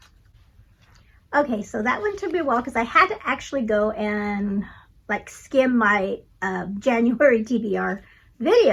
Okay, so that one took me a while because I had to actually go and like skim my January TBR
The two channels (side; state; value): both; identical; correlation 1.00